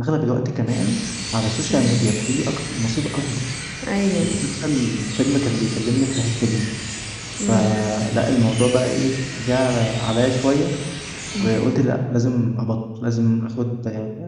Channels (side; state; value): both; identical; correlation 1.00